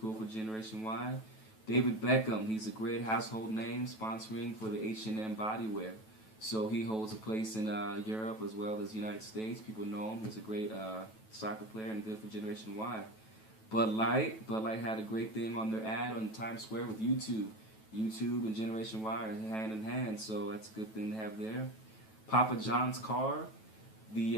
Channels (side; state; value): right; late; 9.2 ms